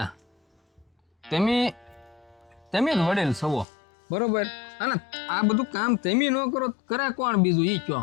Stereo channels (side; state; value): right; drops out; at 3.7 s